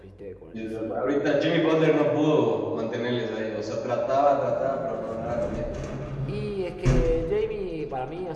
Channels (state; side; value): identical; both; correlation 1.00